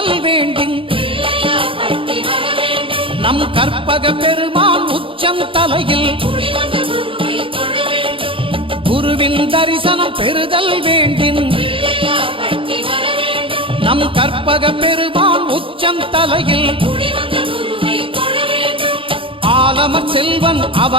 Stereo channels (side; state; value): left; late; 0.26 ms